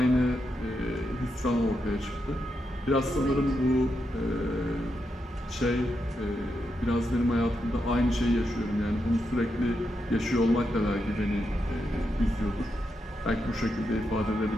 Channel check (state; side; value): normal; both; correlation 0.84